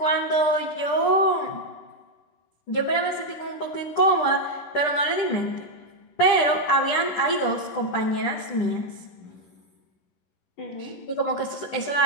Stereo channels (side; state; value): right; late; 10 ms